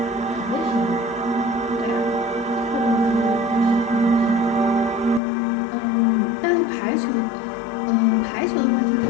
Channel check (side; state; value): right; drops out; at 5.2 s